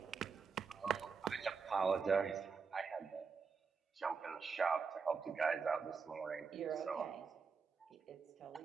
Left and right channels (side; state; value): left; quieter; 5.4 dB